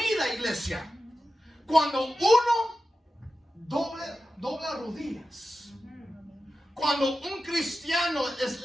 iglesia, cuando uno dobla rodillas. Cuando un cristiano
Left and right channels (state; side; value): normal; both; correlation 0.93